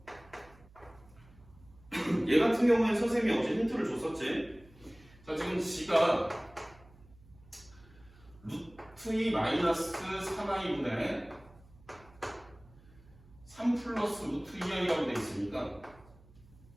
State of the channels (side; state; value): right; noise; hum, 25 dB below the sound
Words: 얘 같은 경우에는 선생님이 어제 힌트를 줬었지. 자, 지금 g가 루트 2 마이너스 3i분의 3 플러스 루트 2i라고 되어 있으니까